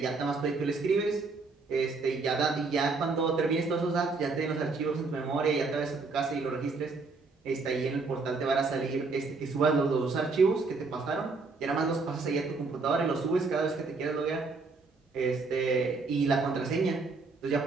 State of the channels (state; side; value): quieter; left; 4.0 dB